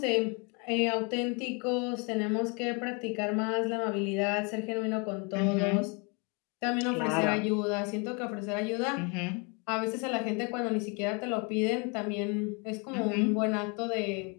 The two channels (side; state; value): right; quieter; 32.7 dB